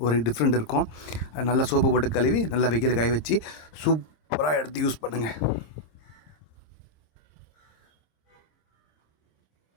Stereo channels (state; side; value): late; right; 26 ms